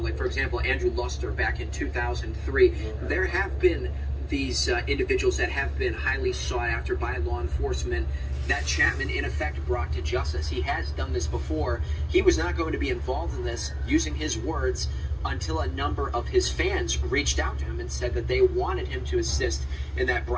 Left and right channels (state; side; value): identical; both; correlation 1.00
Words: Like, for example, Andrew Luster back in 2003. There have been these individuals that have been highly sought after by law enforcement that Chapman, in effect, brought to justice. He has done this before. He was not going to be involved in this, using his words, until a number of his fans reached out to him and said that they wanted him to assist in that